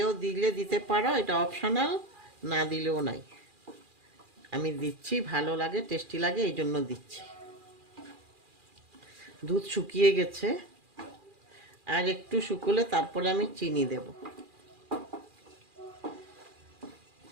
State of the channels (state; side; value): late; left; 2.4 ms